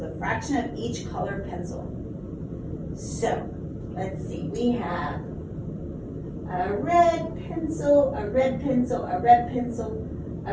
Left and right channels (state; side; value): identical; both; correlation 1.00